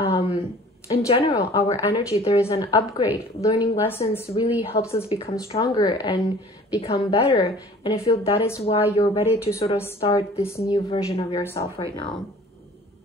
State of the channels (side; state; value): both; normal; correlation 0.48